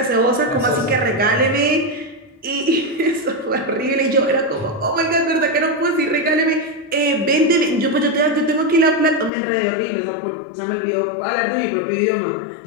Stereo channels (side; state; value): right; drops out; at 9.3 s